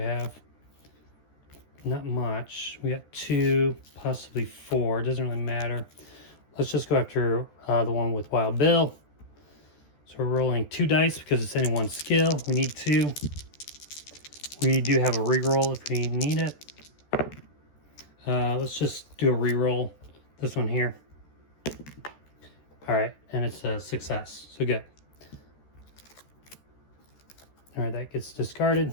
Not much. We got 2, possibly 4. It doesn't really matter. Let's just go after the one with Wild Bill. So we're rolling 2 dice because it's any 1 skill. We need 2. We do have a reroll if we need it. Let's just do a reroll. This one here. All right, and it's a success. So good. All right, that gets discarded.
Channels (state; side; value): late; right; 14 ms